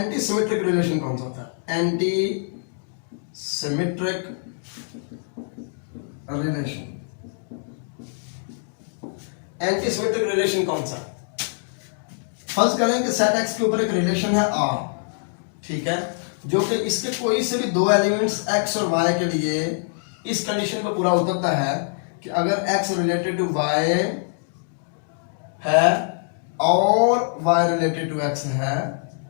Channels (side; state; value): right; silent; digital silence